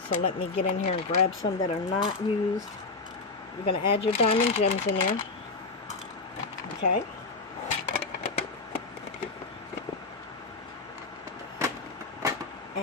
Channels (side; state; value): right; quieter; 3.8 dB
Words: So let me get in here and grab some that are not used. You're going to add your diamond gems in there. Okay.